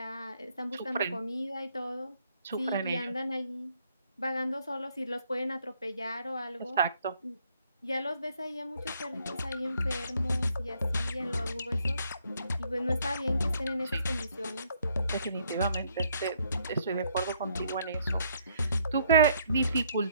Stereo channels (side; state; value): both; inverted; correlation -0.67